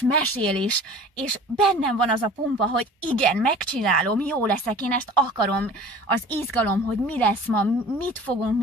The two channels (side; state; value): both; normal; correlation 0.44